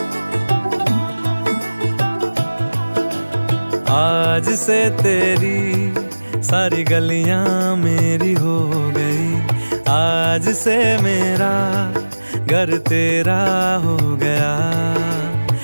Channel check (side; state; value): both; inverted; correlation -1.00